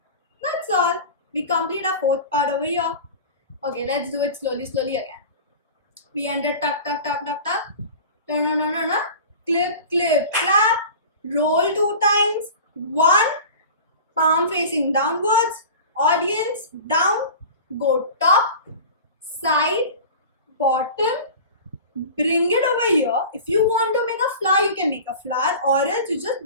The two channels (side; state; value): both; inverted; correlation -0.36